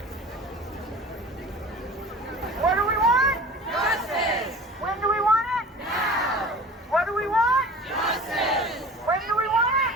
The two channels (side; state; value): both; normal; correlation 0.40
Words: What do we want? Justice. When do we want it? Now. What do we want? Justice. When do we want